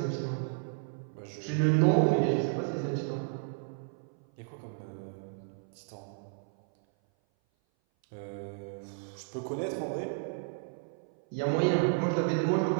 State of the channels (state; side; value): silent; left; 56 dB below the other